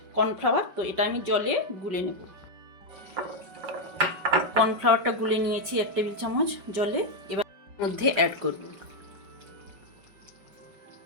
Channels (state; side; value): late; left; 5.2 ms